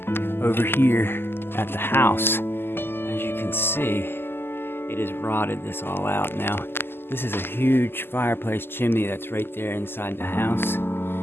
over here at the house. As you can see, it has rotted this all out. Now this is a huge fireplace chimney that's right there inside the house,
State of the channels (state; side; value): late; right; 0.11 ms